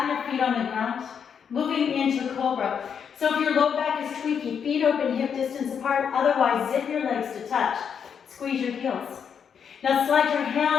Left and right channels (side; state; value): right; quieter; 7.3 dB